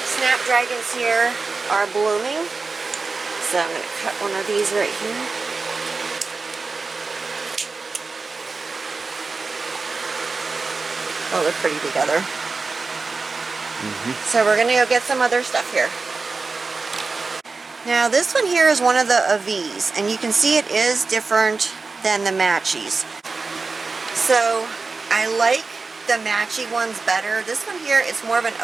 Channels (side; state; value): left; quieter; 4.2 dB